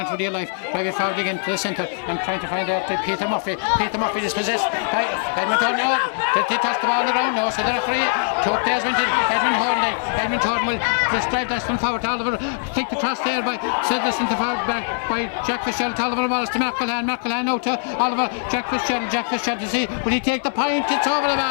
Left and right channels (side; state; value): right; silent; 64 dB below the other